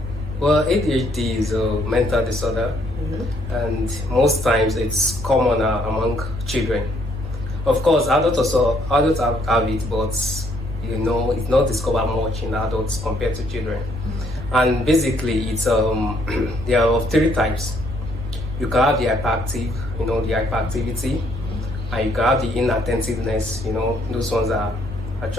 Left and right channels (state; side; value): normal; both; correlation 0.69